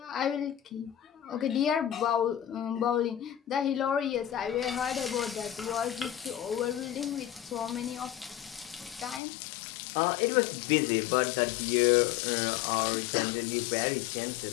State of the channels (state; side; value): drops out; right; at 9.2 s